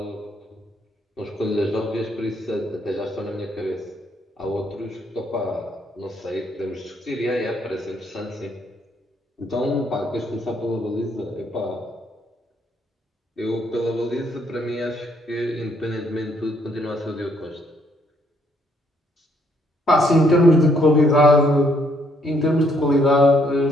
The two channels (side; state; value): both; normal; correlation 0.70